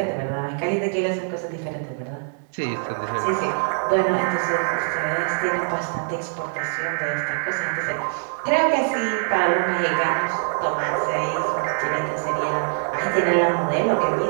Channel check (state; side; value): silent; left; digital silence